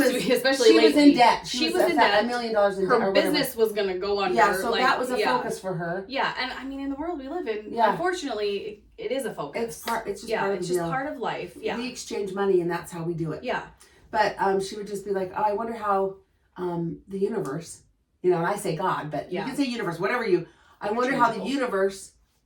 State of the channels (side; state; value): both; identical; correlation 1.00